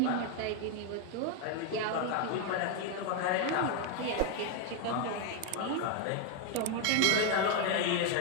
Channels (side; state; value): both; different; correlation 0.01